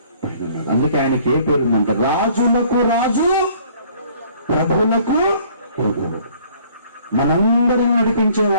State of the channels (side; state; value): both; inverted; correlation -0.57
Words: పుట్టినాడు. అందుకే ఆయనకి ఏ పేరు ఉందంటే రాజులకు రాజు, ప్రభువులకు ప్రభువు. మనందరిని